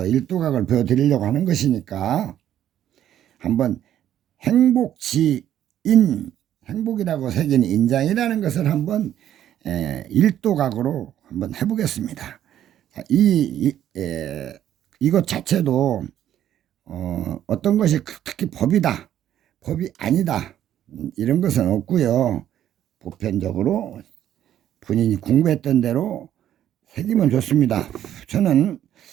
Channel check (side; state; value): left; quieter; 11.2 dB